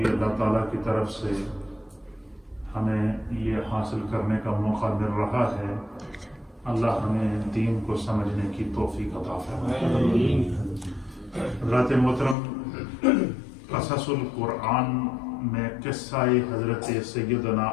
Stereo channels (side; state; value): right; drops out; at 12.4 s